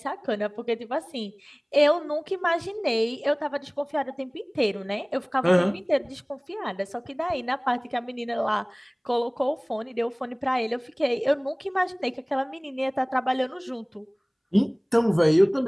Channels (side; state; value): both; identical; correlation 1.00